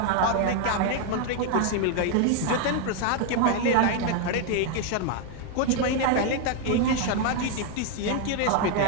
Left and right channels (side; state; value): both; different; correlation 0.01